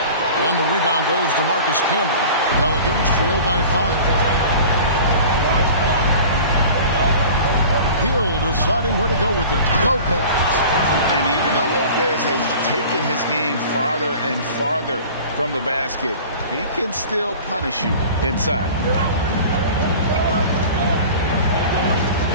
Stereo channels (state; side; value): inverted; both; correlation -0.41